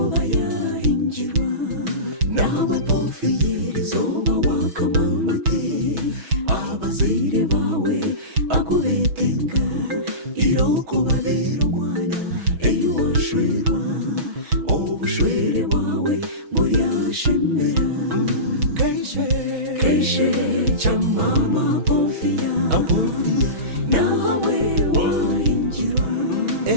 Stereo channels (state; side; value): late; left; 6.2 ms